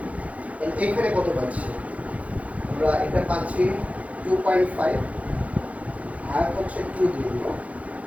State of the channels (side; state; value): left; late; 0.067 ms